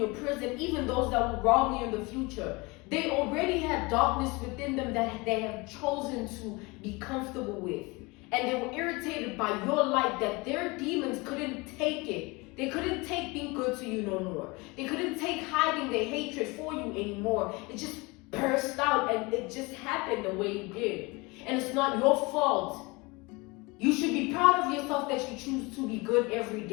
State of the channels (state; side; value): quieter; right; 25.4 dB